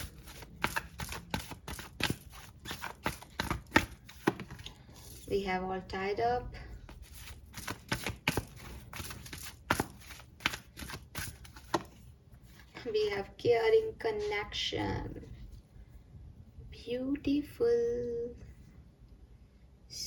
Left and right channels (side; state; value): both; identical; correlation 1.00